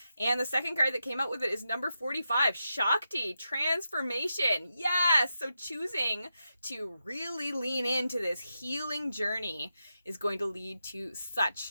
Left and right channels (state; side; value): inverted; both; correlation -0.88